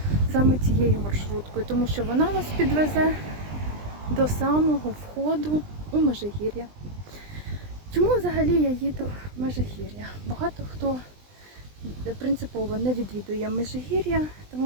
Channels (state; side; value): late; left; 20 ms